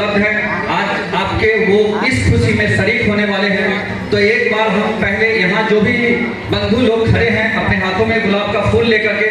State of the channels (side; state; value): both; identical; correlation 1.00